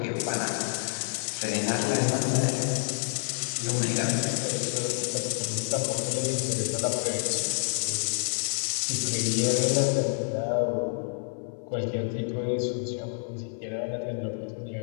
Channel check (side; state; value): right; silent; 58 dB below the other